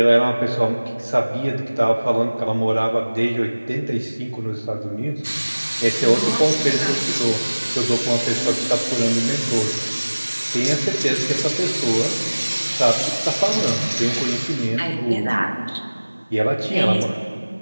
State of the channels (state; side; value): inverted; both; correlation -1.00